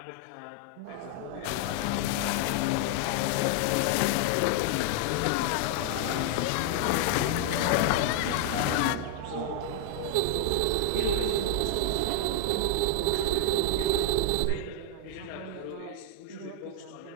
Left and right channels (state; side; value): different; both; correlation 0.00